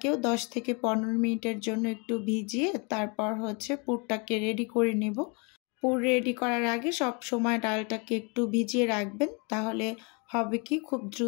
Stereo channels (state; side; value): quieter; right; 32.3 dB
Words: 10 থেকে 15 মিনিটের জন্য একটু ভিজিয়ে তারপর পুরটাকে রেডি করে নেব। পুর রেডি করার আগে সব সময় ডালটাকে একটু ভিজিয়ে রাখবেন, তাহলে হবে কি, খুব